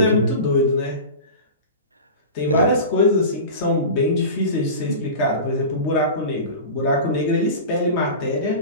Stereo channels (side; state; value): both; inverted; correlation -0.31